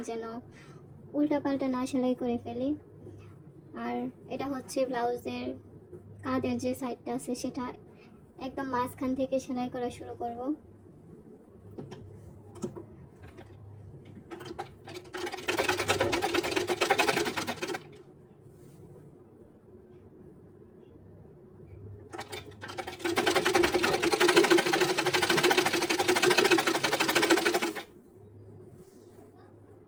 যেন উল্টাপাল্টা না সেলাই করে ফেলি। আর এটা হচ্ছে ব্লাউজের কাঁধের যে সাইডটা আছে সেটা একদম মাঝখান থেকে সেলাই করা শুরু করব।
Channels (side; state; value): both; identical; correlation 1.00